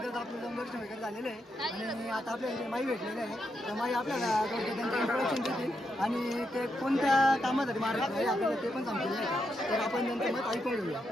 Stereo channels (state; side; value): normal; both; correlation 0.82